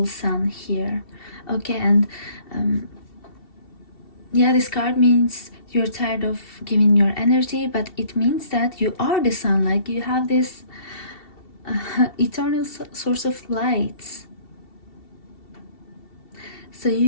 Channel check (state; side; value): late; right; 2.7 ms